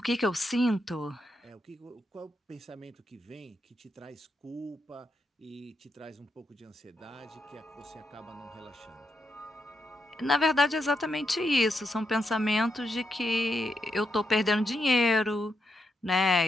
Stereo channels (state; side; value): normal; both; correlation 0.82